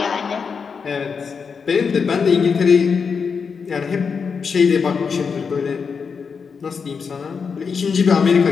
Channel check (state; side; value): quieter; right; 5.7 dB